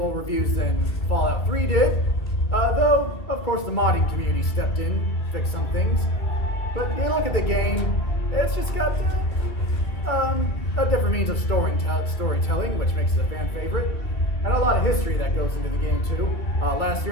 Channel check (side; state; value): right; late; 2.2 ms